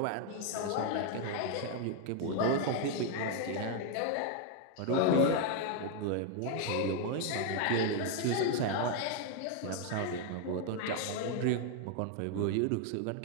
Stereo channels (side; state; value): both; different; correlation 0.01